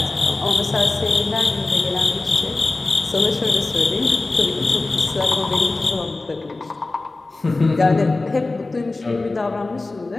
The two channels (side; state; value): right; quieter; 3.3 dB